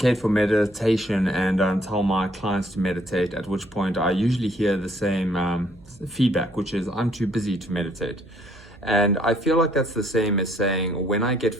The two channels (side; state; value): right; noise; hum, 25 dB below the sound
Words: for meditation and tell my clients to meditate, at which point I usually hear the same feedback, which is I'm too busy to meditate. And I feel like that's the same as saying, when I get